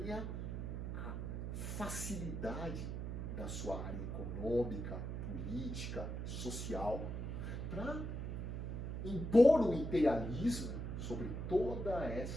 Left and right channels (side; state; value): right; noise; hum, 4 dB below the sound